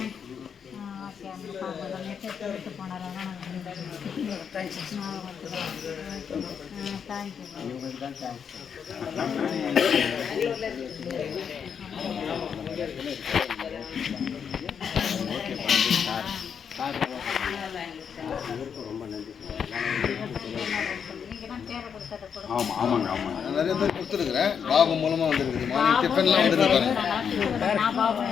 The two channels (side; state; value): right; quieter; 7.2 dB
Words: ஓகே, மெசேஜ் போனார் ஆமாம் ஆமாங்க ஆமாங்க. நான் நிறைய பேர் கொடுத்துருக்குறேன், பாபு மூலமாக வந்துருக்குது. மார்னிங் டிஃபன்லாம் வந்துருக்கு.